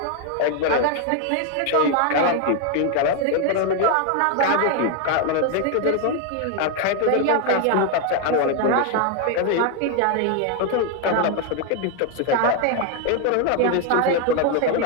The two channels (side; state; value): both; different; correlation 0.01